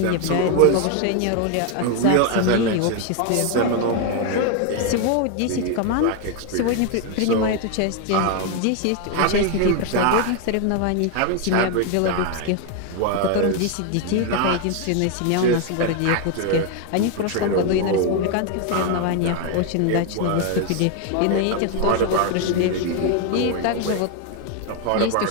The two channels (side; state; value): both; different; correlation 0.01